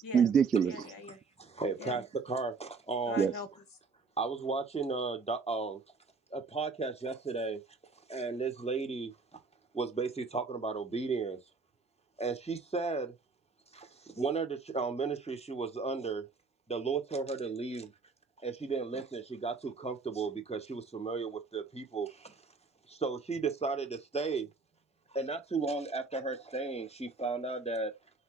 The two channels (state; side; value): quieter; left; 4.5 dB